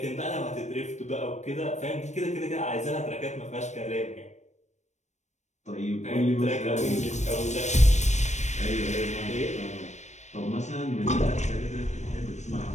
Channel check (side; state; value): right; late; 0.34 ms